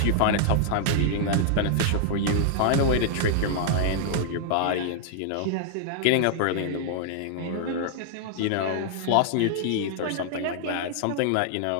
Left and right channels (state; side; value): different; both; correlation -0.01